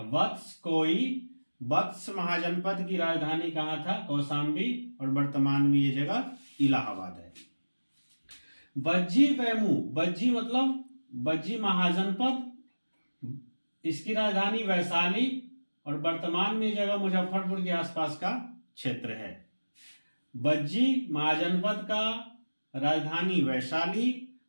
वत्स कोई, वत्स महाजनपद की राजधानी कहां था? कौशाम्बी और वर्तमान में ये जगह इलाहाबाद है। बज्जी वैमू, बज्जी मतलब बज्जी महाजनपद, इसकी राजधानी वैशाली और वर्तमान में ये जगह मुजफ्फरपुर के आसपास का क्षेत्र है। बज्जी महाजनपद का राजधानी वैशाली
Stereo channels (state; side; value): inverted; both; correlation -1.00